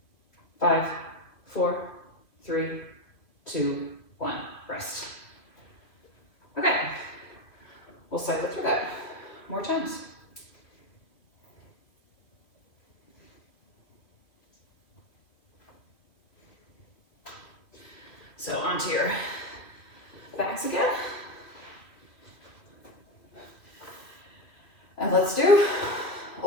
5, 4, 3, 2, 1. Rest. Okay. We'll cycle through that more times. So onto your backs again. And let's do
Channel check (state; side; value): late; right; 2.5 ms